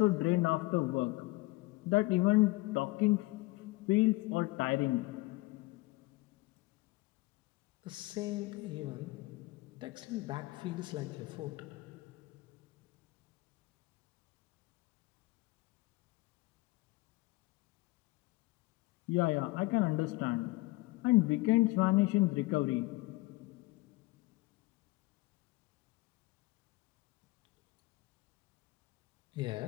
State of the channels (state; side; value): quieter; right; 21.6 dB